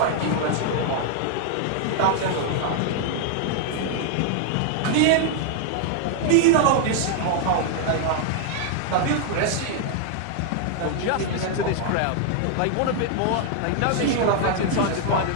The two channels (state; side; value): different; both; correlation 0.00